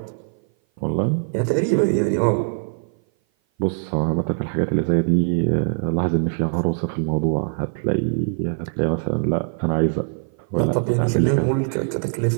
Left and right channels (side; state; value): left; silent; 57 dB below the other